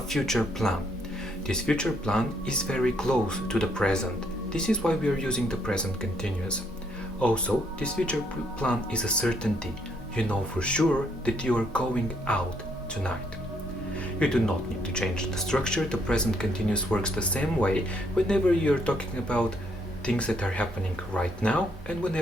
plan. This future plan is very close to the present. This is why we are using the present continuous. Also, this future plan is a certainty. You know for sure that you are going out tonight. You do not need to change the structure. The present continuous works the same way whenever you're talking about things that are happening right now and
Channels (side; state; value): both; normal; correlation 0.71